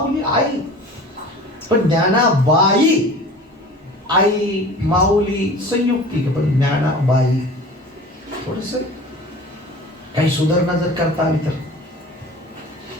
आई, पण ज्ञानाबाई आई माऊली संयुक्तिक, पण ज्ञानाबाई थोडस काही सुधारणा जर करता आली तर.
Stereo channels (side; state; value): both; normal; correlation 0.40